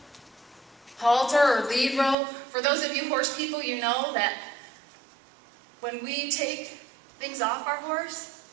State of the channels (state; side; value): drops out; left; at 2.1 s